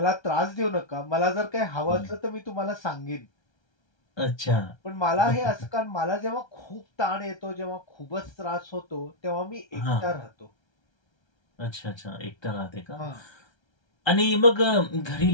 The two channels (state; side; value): late; right; 1.3 ms